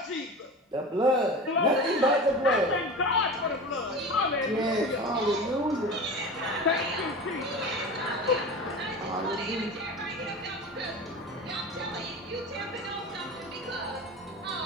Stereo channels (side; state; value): both; normal; correlation 0.31